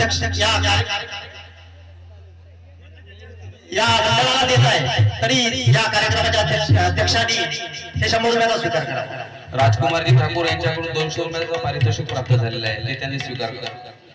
या मंडळाला देत आहे. तरी या कार्यक्रमाच्या अध्यक्षांनी हे 100 रुपयाचा स्वीकार करा. राजकुमारजी ठाकूर यांच्याकडून 200 रुपयाचं पारितोषिक प्राप्त झालेलं आहे, ते त्यांनी स्वीकार करा.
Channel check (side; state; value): both; identical; correlation 1.00